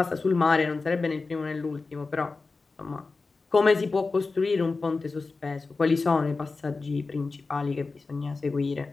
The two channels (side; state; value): right; quieter; 3.9 dB